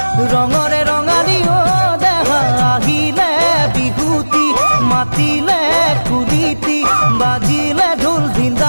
ৰঙৰে ৰঙালী দেহা আহিলে বিহুতি মাতিলে কুলিতি বাজিলে ঢোল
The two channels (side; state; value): both; inverted; correlation -1.00